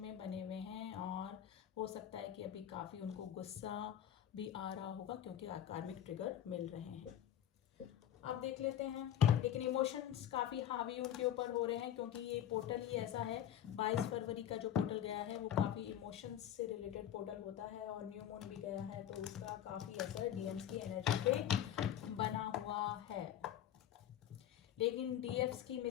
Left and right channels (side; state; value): right; quieter; 10.5 dB